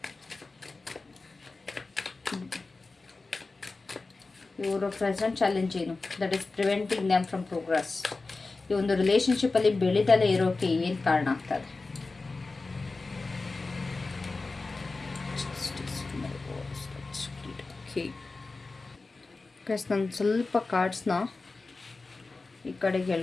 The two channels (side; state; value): right; quieter; 3.7 dB